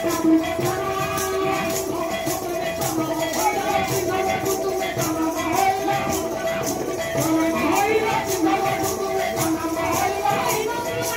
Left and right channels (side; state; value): left; noise; hum, 22 dB below the sound